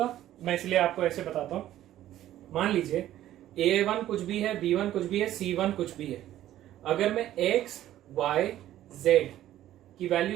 मैं इसलिए आपको ऐसे बताता हूं। मान लीजिए a1 कुछ भी है, b1 कुछ भी है, c1 कुछ भी है। अगर मैं x, y, z की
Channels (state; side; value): quieter; left; 13.1 dB